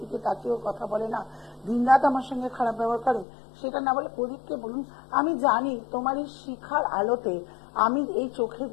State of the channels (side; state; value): right; drops out; at 3.2 s